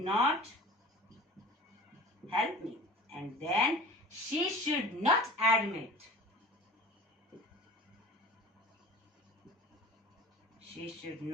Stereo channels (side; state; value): both; normal; correlation 0.39